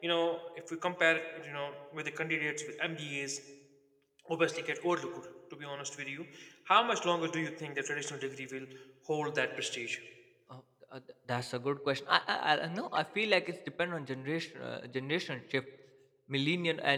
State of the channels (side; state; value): both; identical; correlation 1.00